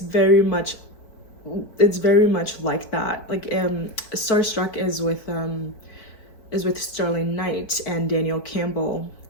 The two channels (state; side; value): late; right; 4.6 ms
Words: much like that. Like Starstruck is with Sterling Knight and Daniel Campbell,